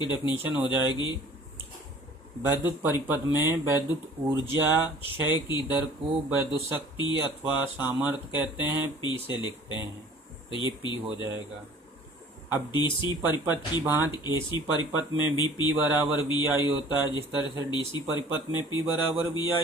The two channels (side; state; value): both; normal; correlation 0.49